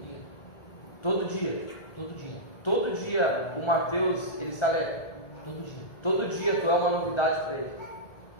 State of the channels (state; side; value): late; right; 1.4 ms